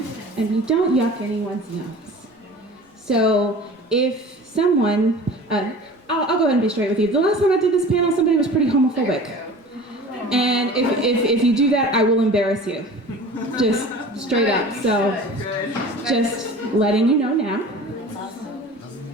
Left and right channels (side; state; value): both; normal; correlation 0.40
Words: and we don't yuck anyone's nose. So if someone, I'll go ahead and be straight with you. The last time I did this panel, somebody was pretty homophobic. And if you do that, I will embarrass you. Just straight up. So just letting you know now.